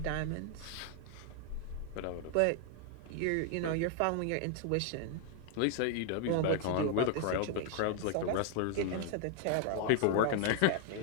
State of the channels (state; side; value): different; both; correlation 0.00